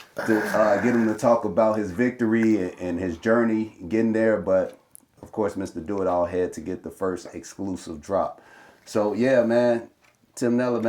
get him to talk about his victory and his journey getting there. But of course, Mr. Do It All had to get the first exclusive drop. So yeah, man, Tim Nela,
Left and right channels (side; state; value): both; identical; correlation 1.00